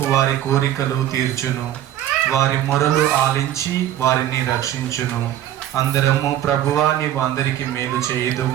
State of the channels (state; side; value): quieter; left; 12.1 dB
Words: వారి కోరికలు తీర్చును. వారి మొరలు ఆలించి వారిని రక్షించును. అందరము ప్రభువా నీవు అందరికీ మేలు